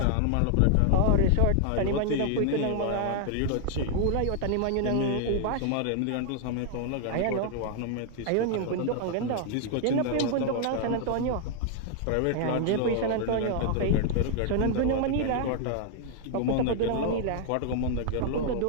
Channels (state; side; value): different; both; correlation 0.00